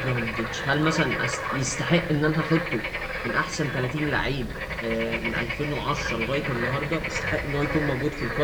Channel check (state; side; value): identical; both; correlation 1.00